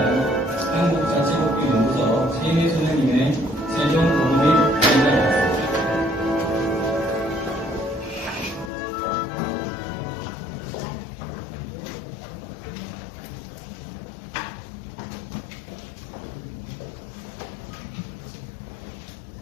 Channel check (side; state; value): right; drops out; at 8.7 s